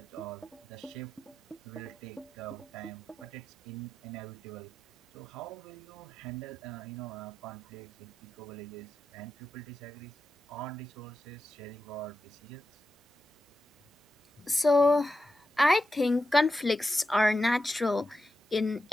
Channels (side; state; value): both; normal; correlation 0.90